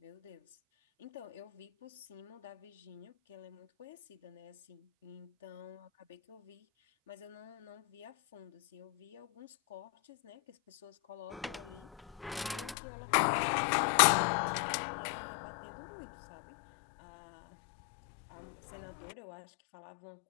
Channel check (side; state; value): right; drops out; at 12.8 s